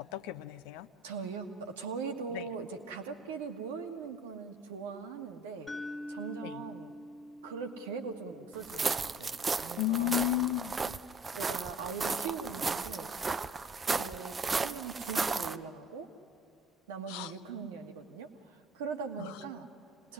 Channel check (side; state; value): both; normal; correlation 0.49